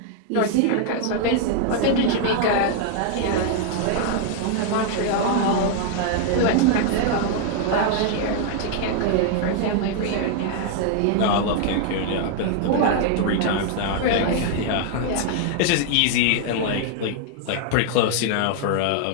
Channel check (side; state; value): both; different; correlation 0.00